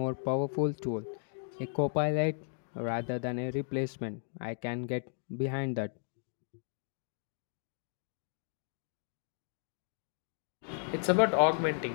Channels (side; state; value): right; silent; 54 dB below the other